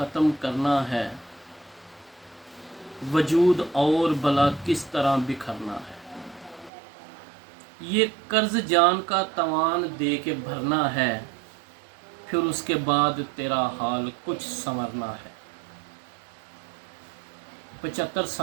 करना है, वजूद और बला किस तरह बिखरना है। ये कर्ज जान का तवान दे के भरना है, फिर उसके बाद तेरा हाल कुछ संवरना है। 75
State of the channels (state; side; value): drops out; left; at 6.7 s